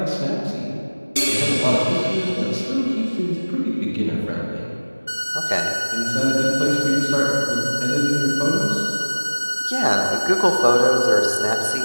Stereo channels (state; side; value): inverted; both; correlation -1.00